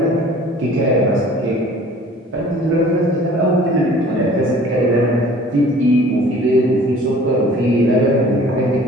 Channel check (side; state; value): both; normal; correlation 0.49